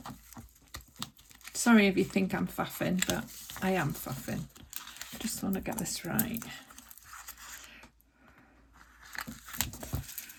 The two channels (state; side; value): identical; both; correlation 1.00